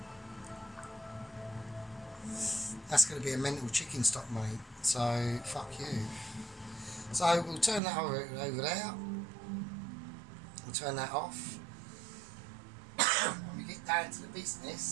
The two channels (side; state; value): left; drops out; at 7.8 s